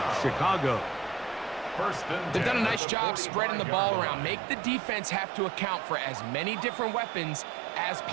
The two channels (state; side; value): drops out; left; at 2.8 s